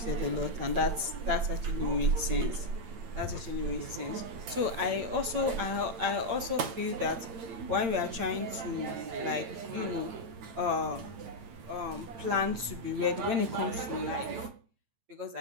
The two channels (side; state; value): left; late; 8.8 ms